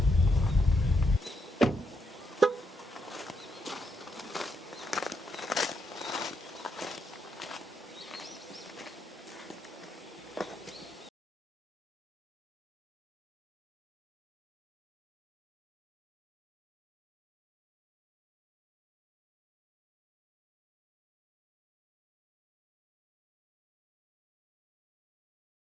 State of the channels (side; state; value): both; normal; correlation 0.78